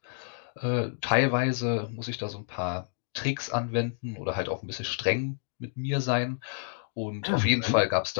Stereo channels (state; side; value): silent; right; digital silence